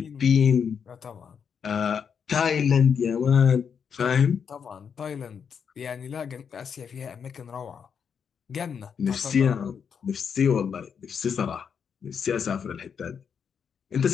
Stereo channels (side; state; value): right; quieter; 7.0 dB